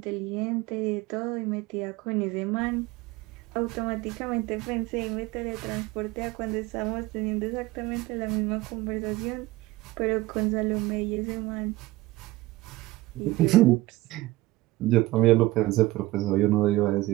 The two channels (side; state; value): left; quieter; 18.7 dB